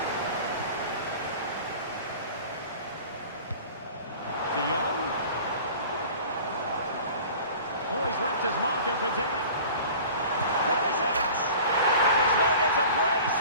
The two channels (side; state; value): both; inverted; correlation -0.42